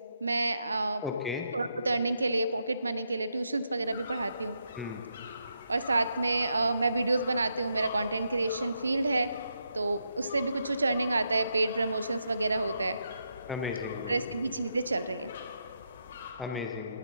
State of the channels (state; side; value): inverted; both; correlation -0.81